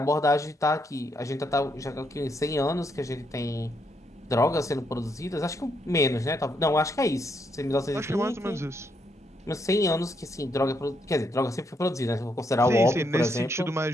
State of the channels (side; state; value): both; normal; correlation 0.77